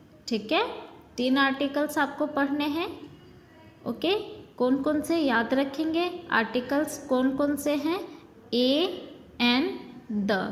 ठीक है, 3 आर्टिकल्स आपको पढ़ने हैं। ओके, कौन कौन से याद रखेंगे? आर्टिकल्स कौन कौन से हैं? ए, एन, द।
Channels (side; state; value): both; identical; correlation 1.00